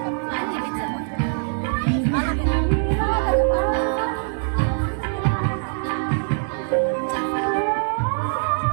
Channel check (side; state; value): left; silent; digital silence